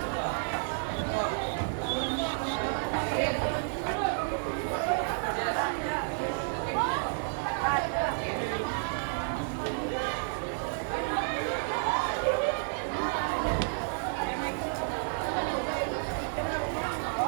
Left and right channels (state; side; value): silent; left; digital silence